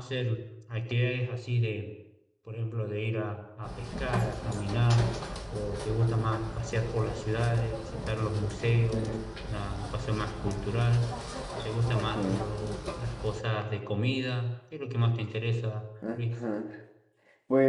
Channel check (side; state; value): both; identical; correlation 1.00